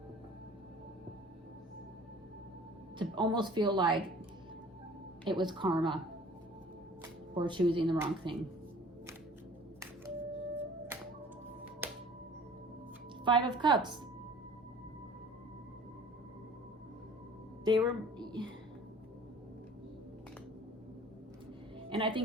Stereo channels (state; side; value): normal; both; correlation 0.48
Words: to almost feel like it was karma for choosing the wrong thing. 5 of Cups. They were... And I